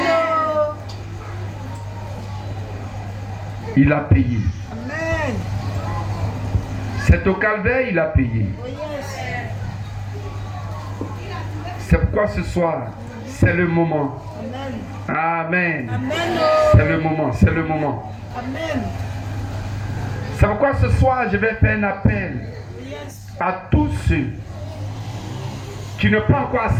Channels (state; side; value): identical; both; correlation 1.00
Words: Il a payé. Amen. C'est au calvaire, il a payé. Oh yes. C'est pourquoi ce soir, c'est le moment. Amen. Amen. Amen. C'est le moment, c'est le moment. Amen. C'est pourquoi ce soir, je vais faire un appel Yes. à tous ceux qui n'ont pas encore